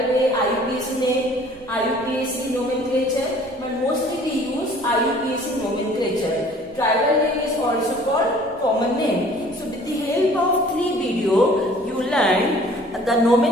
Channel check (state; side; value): noise; right; rumble, 26 dB below the sound